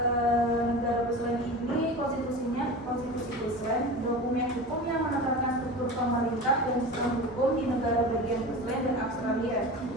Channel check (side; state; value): both; normal; correlation 0.31